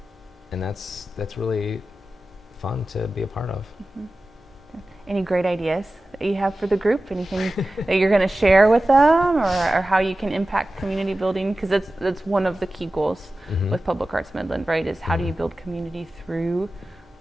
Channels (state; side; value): normal; both; correlation 0.95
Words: And that's really fun to be a part of. Any great ideas that you have for the group? Anything that you're going to share with them, or how you can impact community building? Because that's one of the key goals with Public Arts Midland, right? Is how do you build community through